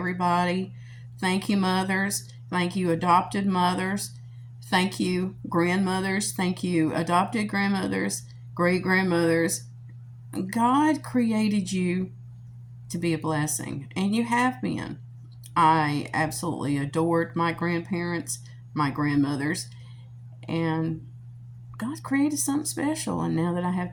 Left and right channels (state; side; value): identical; both; correlation 1.00